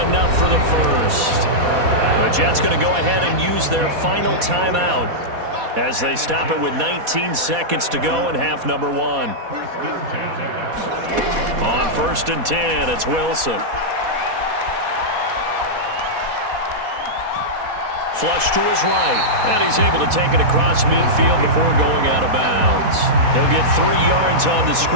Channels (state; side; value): late; left; 4.1 ms